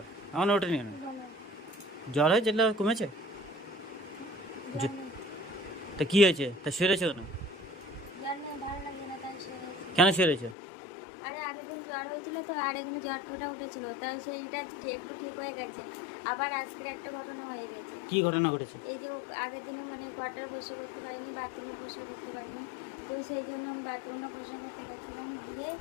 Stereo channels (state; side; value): drops out; right; at 10.6 s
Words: আমার ওঠেনি কেন? জ্বর হয়েছে? কমেছে? তা কি হয়েছে? তা শুয়ে রয়েছে কেন? কেন শুয়ে রয়েছে? আরে আগের দিন জ্বর হয়েছিল তো, আর এখানে জ্বর টোটা উঠেছিল, তাই সেইটা একটু ঠিক হয়ে গেছে। আবার আজকে একটা ঘটনা হয়ে গেছে। কি ঘটনা ঘটেছে? এই যে আগের দিনে মানে কোয়ার্টারে বসে করতে পারিনি, বাথরুমে বসে করতে পারিনি, তো সেই জন্য আমি বাথরুমে বসে করতে গেছিলাম, গিয়ে